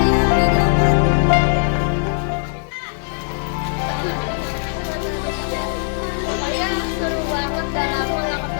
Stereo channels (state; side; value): silent; right; digital silence